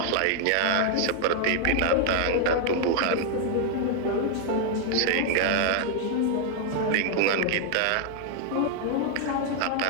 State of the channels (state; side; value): different; both; correlation 0.00